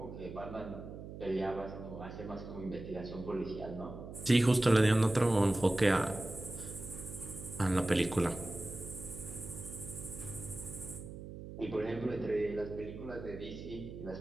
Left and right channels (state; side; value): noise; right; hum, 11 dB below the sound